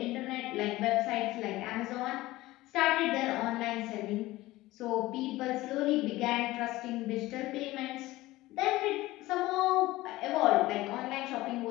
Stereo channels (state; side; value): quieter; right; 18.0 dB